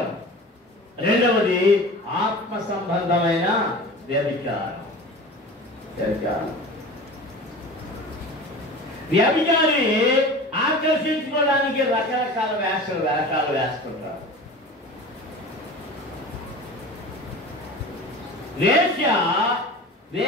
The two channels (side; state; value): both; normal; correlation 0.36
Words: రెండవది ఆత్మ సంబంధమైన వ్యభిచారం. వ్యభిచారి ఆకర్షించుకోవడానికి రకరకాల వేషాలు వేస్తుంటారు.